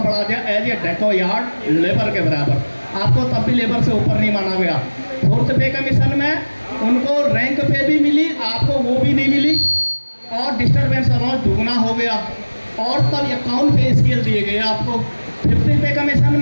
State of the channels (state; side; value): inverted; both; correlation -1.00